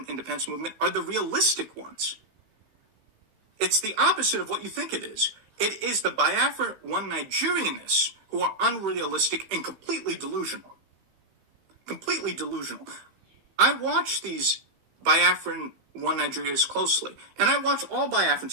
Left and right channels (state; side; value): late; left; 16 ms